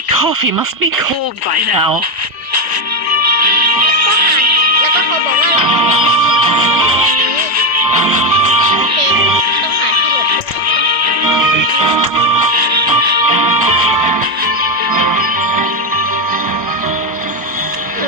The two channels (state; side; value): late; left; 1.0 ms